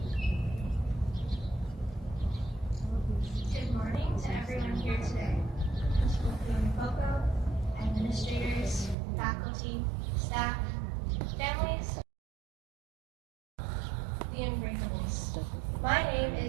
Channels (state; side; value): drops out; left; at 9.0 s